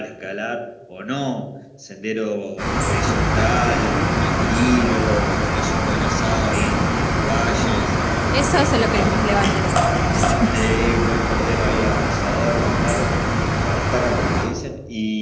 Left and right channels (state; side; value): identical; both; correlation 1.00